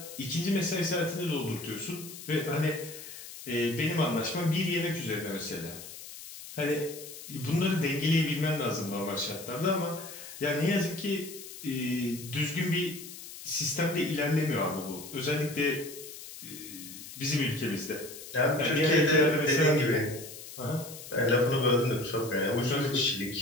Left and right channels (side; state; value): left; noise; hiss, 13 dB below the sound